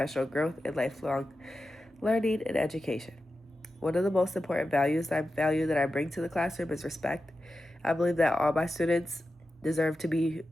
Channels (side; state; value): both; normal; correlation 0.92